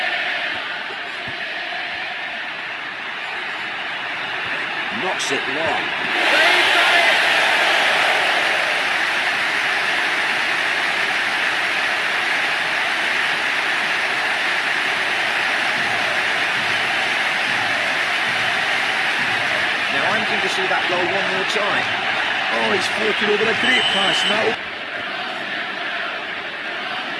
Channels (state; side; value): identical; both; correlation 1.00